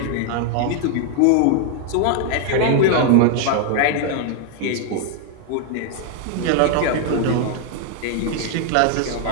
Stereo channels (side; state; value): both; different; correlation 0.00